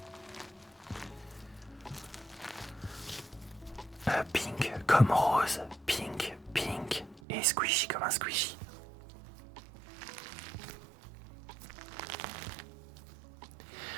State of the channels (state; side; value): drops out; left; at 7.2 s